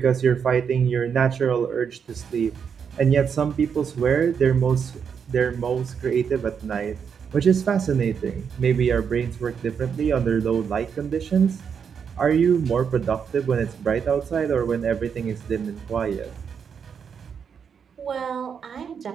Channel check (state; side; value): quieter; left; 6.9 dB